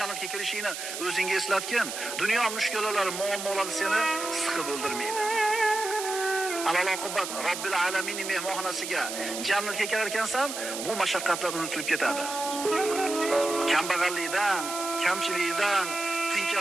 kirishingni o'zingga eslatgin. Dunyo mushkulalari, muammolari seni siqib o'ldirmaydi. Alal oqibat Robbil alamin mehmonxonasiga jannatga kirar ekansan, bu mashaqqatlar unutilib ketadi. Kambag'allikdan, kamchilikdan,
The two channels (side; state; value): right; noise; hiss, 7 dB below the sound